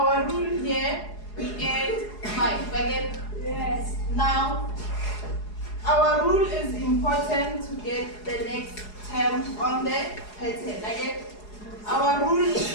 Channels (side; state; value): right; late; 4.8 ms